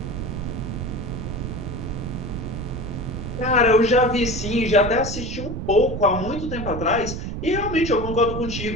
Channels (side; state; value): right; noise; rumble, 5 dB below the sound